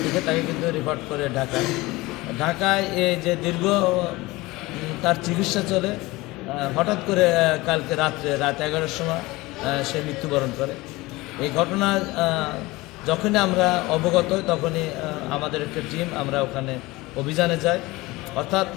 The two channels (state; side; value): quieter; right; 20.9 dB